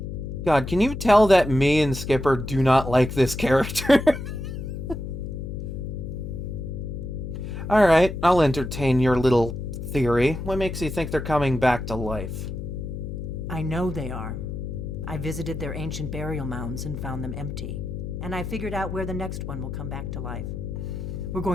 God, can you tell that me and Skipper do not like this character? Alright, I'll entertain your little theory. What makes you think they're coming back to life? I know they are. I visited their ancient burial mounds and found them empty. And I figured out where the next one will come back to life. We're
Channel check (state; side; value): noise; left; hum, 6 dB below the sound